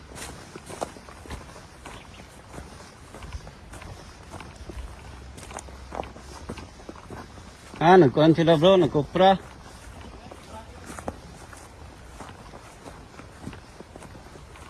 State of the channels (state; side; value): identical; both; correlation 1.00